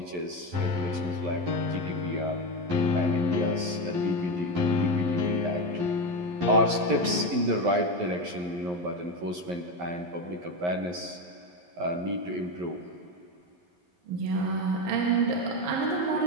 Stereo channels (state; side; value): late; left; 11 ms